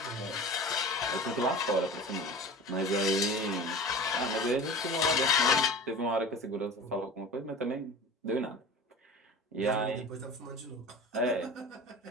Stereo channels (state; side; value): normal; both; correlation 0.36